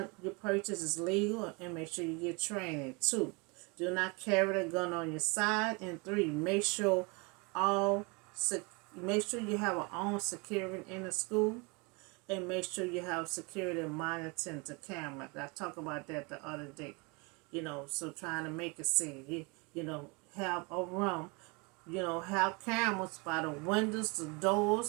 you purchase is legal and make sure you get training. 2, do not carry the gun on your side. And 3, make sure you have a own security in the school, and make sure you have security monitoring the camera. I talked about that the other day. So trying to make it safe. Have a room. Have cameras by the windows, the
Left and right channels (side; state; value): left; quieter; 29.8 dB